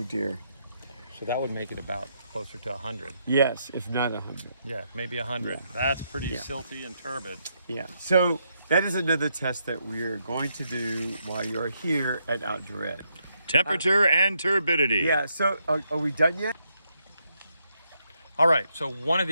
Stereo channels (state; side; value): inverted; both; correlation -0.78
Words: dear. So that would make it about closer to 100. Yes, if not 100. Yeah, maybe 100. That's pretty Yeah. silty and turbid. Yeah. So that is another test that we are going to do while you're here at Outdoor Ed. Temperature and turbidity. Yeah. So are we done yet? All right, so one of